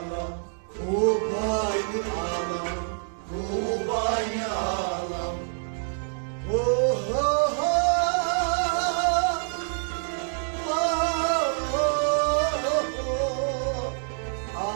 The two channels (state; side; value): silent; left; 58 dB below the other